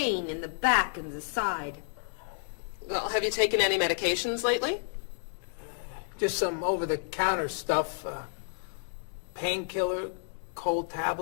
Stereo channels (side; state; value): right; silent; digital silence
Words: in the back and the side? Well, have you taken any medications lately? Just some over-the-counter stuff. Painkiller, cold